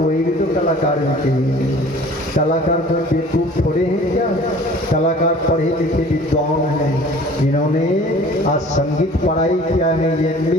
वही भी तो कलाकार में कहेंगे। कलाकार कोई बेवकूफ थोड़े हैं क्या? कलाकार पढ़े लिखे विद्वान हैं, जिन्होंने आज संगीत पढ़ाई किया है,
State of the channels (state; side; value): normal; both; correlation 0.48